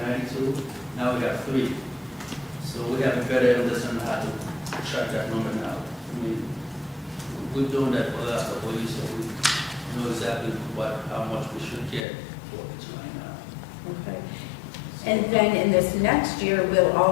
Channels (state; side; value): drops out; right; at 12.1 s